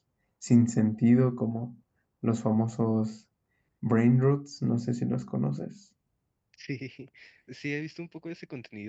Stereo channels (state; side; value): identical; both; correlation 1.00